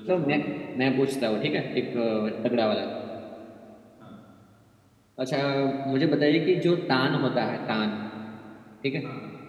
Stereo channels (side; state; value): both; identical; correlation 1.00